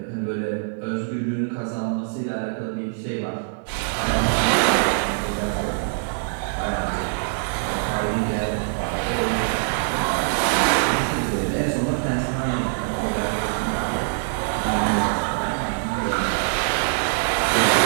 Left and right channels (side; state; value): left; silent; digital silence